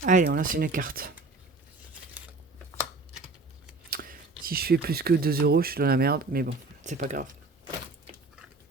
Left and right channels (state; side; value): quieter; left; 3.6 dB